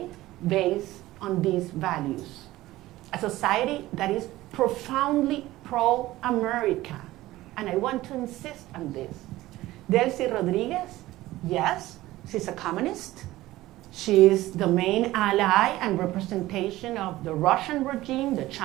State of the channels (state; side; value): quieter; left; 16.8 dB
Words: based on these values. A society that is profoundly pro-America. And I want to insist on this. Delcy Rodriguez, yes, she's a communist. She is the main ally and representation of the Russian regime, the